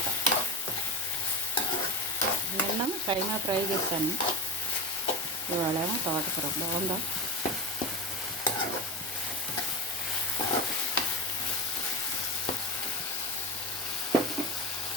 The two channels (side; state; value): both; normal; correlation 0.22